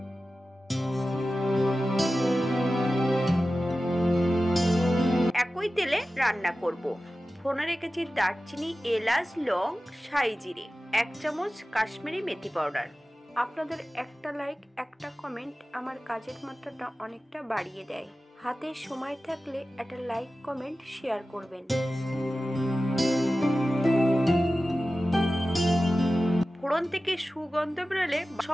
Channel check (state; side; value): normal; both; correlation 0.95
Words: একই তেলে রান্না করব। ফোড়নে রেখেছি দারচিনি, এলাচ, লং, সাই জিরে, 1 চামচ কাশ্মীরি মেথি পাউডার। আপনাদের একটা লাইক, একটা কমেন্ট আমার কাজের মাত্রাটা অনেকটা বাড়িয়ে দেয়। হাতে সময় থাকলে একটা লাইক, কমেন্ট, শেয়ার করবেন। ফোড়ন থেকে সুগন্ধ বেরোলে